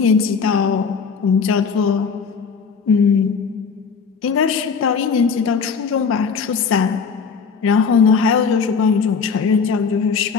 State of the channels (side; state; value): right; quieter; 5.7 dB